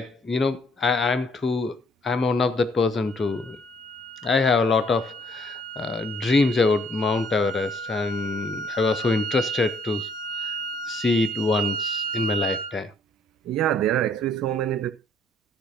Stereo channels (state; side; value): normal; both; correlation 0.64